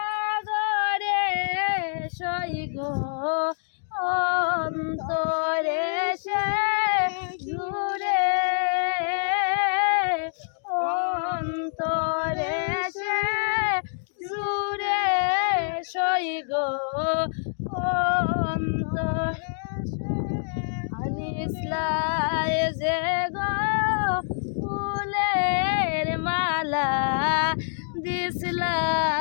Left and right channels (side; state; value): right; silent; digital silence